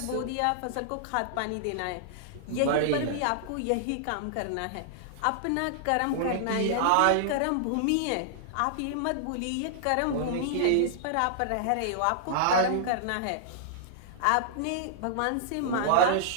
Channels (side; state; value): both; different; correlation -0.01